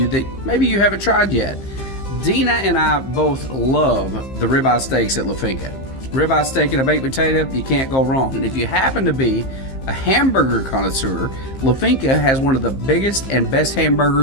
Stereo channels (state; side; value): late; right; 15 ms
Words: that maybe you haven't tried yet. Dina and I both love the ribeye steaks at La Finca. Ribeye steak and a baked potato, you can't go wrong. And if you happen to be a hamburger connoisseur, La Finca has one of the biggest and best